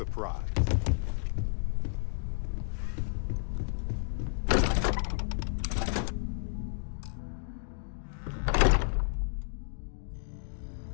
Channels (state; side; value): silent; right; digital silence